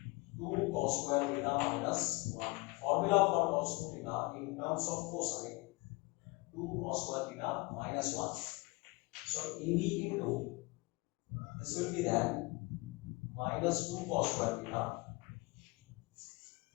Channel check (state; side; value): quieter; right; 25.3 dB